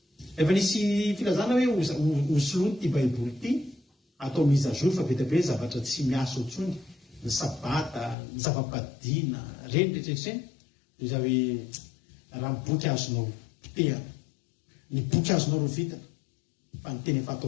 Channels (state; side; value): drops out; right; at 8.2 s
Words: efa nisy filazana hoe hosoloany ty baiboly ity atao mise à jour fa be dia be zavatra tsy miasa otsony ny sabata ny zava-padina reny rehetraretreny dia za hoe raha ny boky azonao potehana ny boky azonao rovitana fa ny teny efa